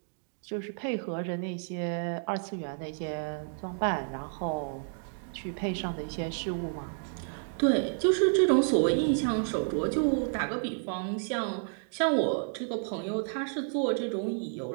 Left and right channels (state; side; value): silent; left; digital silence